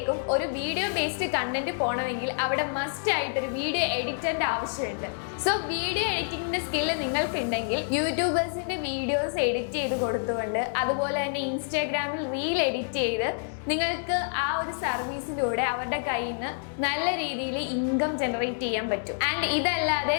ഒരു വീഡിയോ ബേസ്ഡ് കണ്ടന്റ് പോകണമെങ്കിൽ അവിടെ മസ്റ്റ് ആയിട്ട് ഒരു വീഡിയോ എഡിറ്ററിന്റെ ആവശ്യമുണ്ട്. സോ വീഡിയോ എഡിറ്റിംഗിന്റെ സ്കില്ല് നിങ്ങൾക്കുണ്ടെങ്കിൽ യൂട്യൂബേഴ്സിന്റെ വീഡിയോസ് എഡിറ്റ് ചെയ്ത് കൊടുത്തുകൊണ്ട് അതുപോലെ തന്നെ ഇൻസ്റ്റാഗ്രാമിൽ റീൽ എഡിറ്റ് ചെയ്ത് നിങ്ങൾക്ക് ആ ഒരു സർവീസിലൂടെ അവരുടെ കയ്യിൽ നിന്ന് നല്ല രീതിയിൽ ഇൻകം ജനറേറ്റ് ചെയ്യാൻ പറ്റും. ആൻഡ് ഇതല്ലാതെ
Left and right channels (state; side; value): silent; right; digital silence